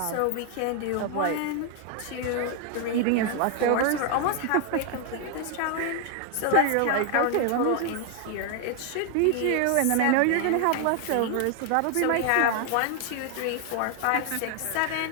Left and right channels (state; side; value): different; both; correlation 0.00